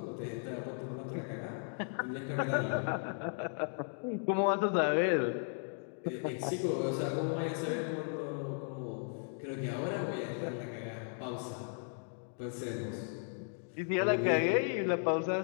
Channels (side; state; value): right; silent; 54 dB below the other